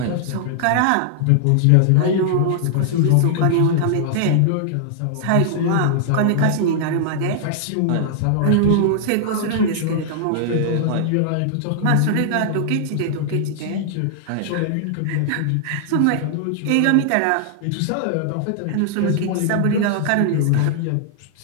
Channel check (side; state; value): both; different; correlation -0.01